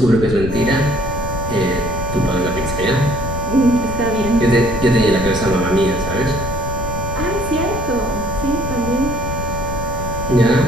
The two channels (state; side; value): noise; left; rumble, 6 dB below the sound